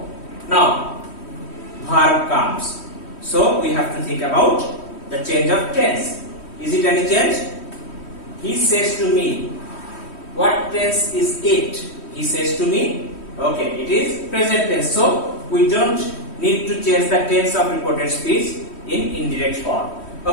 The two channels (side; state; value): right; late; 3.1 ms